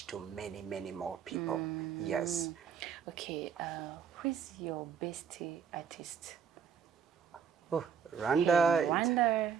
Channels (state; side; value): quieter; left; 7.2 dB